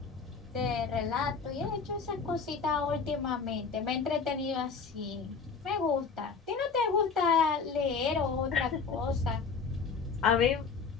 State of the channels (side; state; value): right; quieter; 5.3 dB